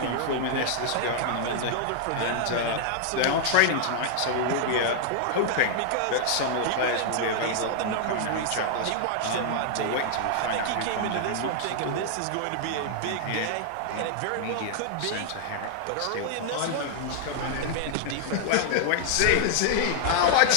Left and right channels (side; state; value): both; different; correlation -0.01